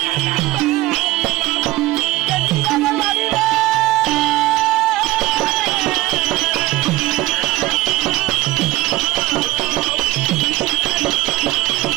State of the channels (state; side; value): quieter; left; 17.8 dB